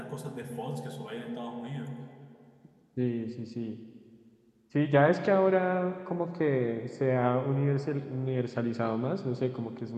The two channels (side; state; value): both; identical; correlation 1.00